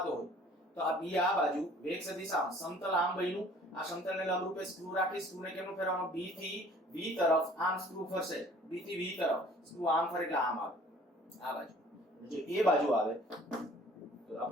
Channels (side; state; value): both; normal; correlation 0.53